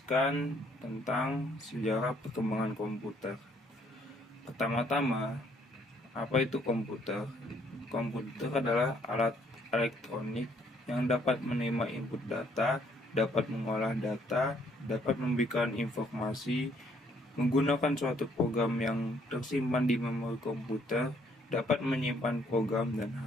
tentang sejarah perkembangan komputer. Pertama-tama, apa itu komputer? Komputer adalah alat elektronik yang dapat menerima input data, dapat mengolah data, dapat memberikan informasi, menggunakan suatu program yang tersimpan di memori komputer, dapat menyimpan program dan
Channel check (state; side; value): normal; both; correlation 0.66